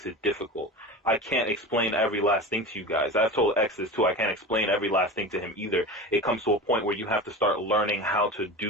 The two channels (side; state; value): both; normal; correlation 0.30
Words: it difficult. I can't explain every last thing to you guys. I've told X this too. I can't explain every last thing to him either. It comes to a point where you have to start learning how to